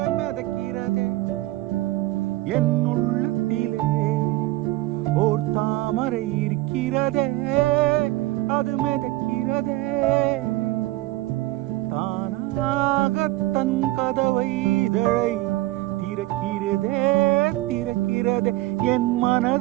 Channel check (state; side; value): quieter; left; 18.1 dB